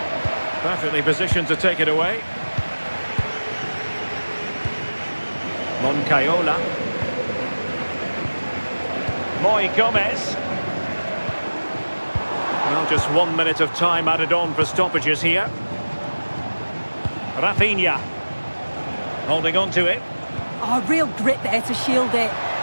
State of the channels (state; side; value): inverted; both; correlation -1.00